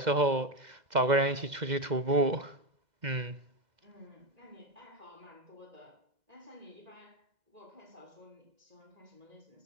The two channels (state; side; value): late; left; 2.0 ms